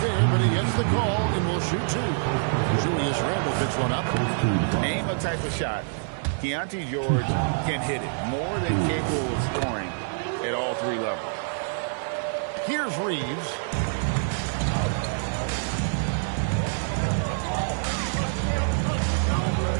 there, but he gets the call and will shoot 2. Julius Randle picks one up. Name a type of shot. Keontae George can hit it. More than capable of scoring at all 3 levels. Here's Reeves.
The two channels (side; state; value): left; silent; 61 dB below the other